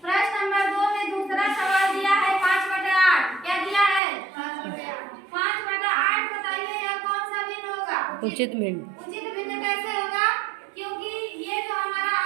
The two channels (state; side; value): drops out; left; at 4.0 s